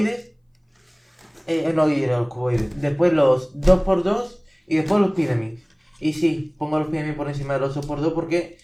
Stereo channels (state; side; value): identical; both; correlation 1.00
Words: No diré los cuboides. Después los dos por dos y después los pyramids. Y sí, pongo los pyramids por encima de los dos por dos porque